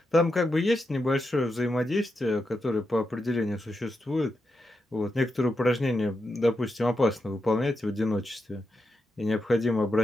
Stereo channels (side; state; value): both; normal; correlation 0.86